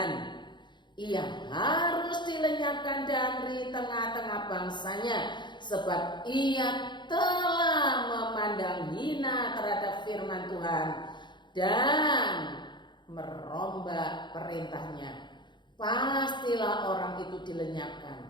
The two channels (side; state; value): right; late; 0.22 ms